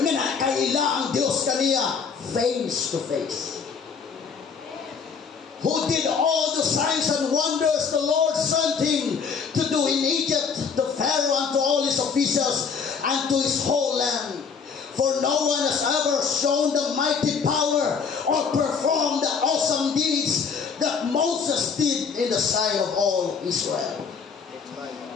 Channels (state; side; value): quieter; right; 5.9 dB